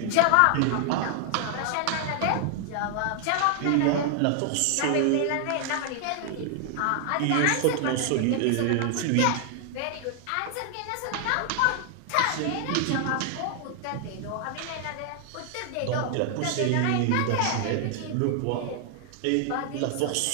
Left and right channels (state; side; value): different; both; correlation 0.00